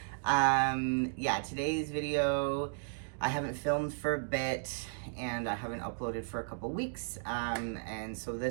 Yeah, today's video, I haven't filmed for a bit and I haven't uploaded for a couple weeks. And so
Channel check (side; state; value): left; silent; digital silence